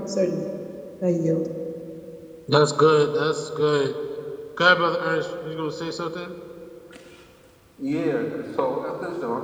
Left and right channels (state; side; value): identical; both; correlation 1.00